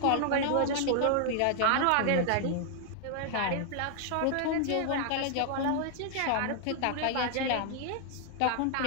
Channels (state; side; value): different; both; correlation 0.00